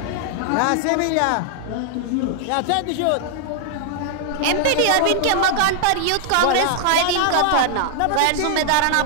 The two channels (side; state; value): both; different; correlation 0.00